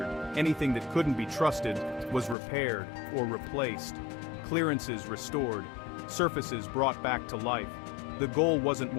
Anything that couldn't be trusted was repaired or replaced. Clearances restored, surfaces brought back to life. The goal wasn't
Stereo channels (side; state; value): right; drops out; at 2.4 s